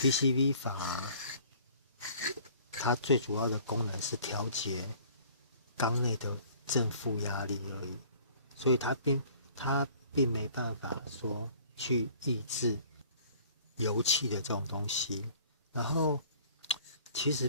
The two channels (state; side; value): inverted; both; correlation -0.52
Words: 法它最主要的功能是调节缸内的正负压力而已，所以它并没办法说去抑制油气的这种东西。然后其